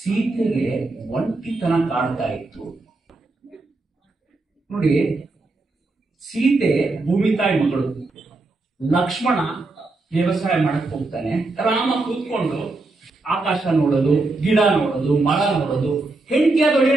ಒಂಟಿತನ ಕಾಡ್ತಾ ಇತ್ತು ನೋಡಿ. ಸೀತೆ ಭೂಮಿ ತಾಯಿ ಮಗಳು, ಲಕ್ಷ್ಮಣ ವ್ಯವಸಾಯ ಮಾಡಕ್ ಹೋಗ್ತಾನೆ, ರಾಮ ಕೂತ್ಕೊಂಡು ಆಕಾಶ ನೋಡೋದು, ಗಿಡ ನೋಡೋದು, ಮರ ನೋಡೋದು. ಹೆಂಡತಿ ಆದವಳು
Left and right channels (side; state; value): left; quieter; 3.3 dB